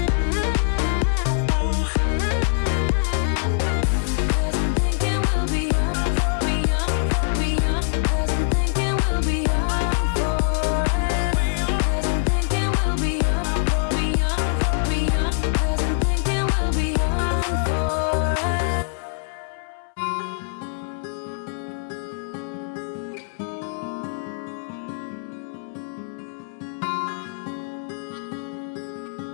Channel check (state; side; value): silent; right; 60 dB below the other